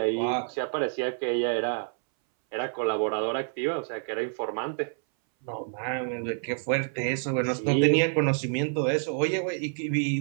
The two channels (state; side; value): silent; left; 59 dB below the other